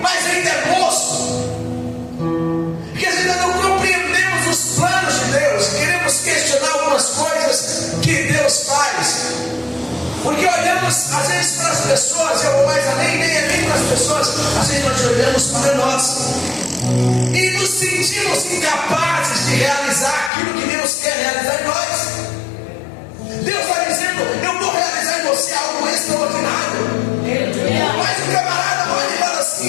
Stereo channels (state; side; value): drops out; right; at 20.3 s